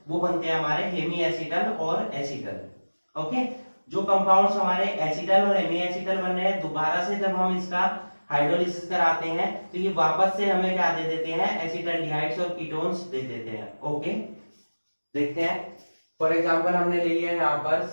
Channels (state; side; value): inverted; both; correlation -1.00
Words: वो बनते हैं हमारे हेमी एसिटल और एसिटल। ओके, जो कंपाउंड्स हमारे एसिटल और हेमी एसिटल बन रहे हैं, दोबारा से जब हम इसका हाइड्रोलिसिस कराते हैं तो ये वापस से हमें क्या दे देते हैं, एसिटल्डिहाइड्स और कीटोन्स दे देते हैं। ओके, देखते हैं। फॉर एग्जांपल हमने ले लिया यहाँ पर